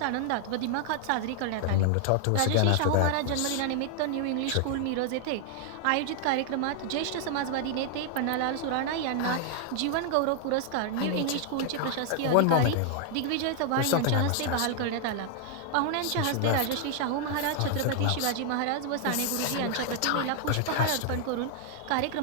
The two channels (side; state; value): both; different; correlation 0.00